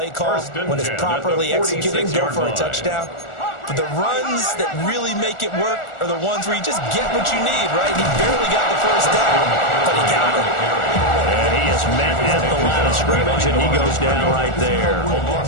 call, when it's properly executed, go for a touchdown. But the runs that really make it work are the ones where you just get what you need, right? He barely got the first down, but he got it. And he is met at the line of scrimmage, and he goes down right there.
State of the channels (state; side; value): late; right; 1.4 ms